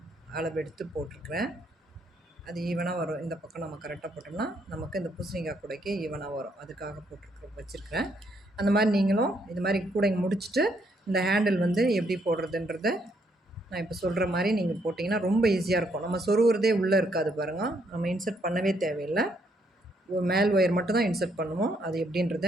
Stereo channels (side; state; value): both; normal; correlation 0.72